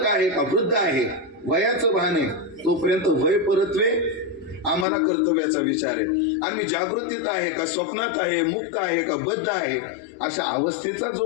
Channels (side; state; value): right; drops out; at 4.9 s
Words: आहे का वृद्ध आहे वयाचं भान आहे तोपर्यंत वय परत्वे आम्हाला कर्तव्याचा विचार आहे. आणि मी जागृतीत आहे का स्वप्नात आहे, मुक्त आहे का बद्ध आहे अशा अवस्थेचा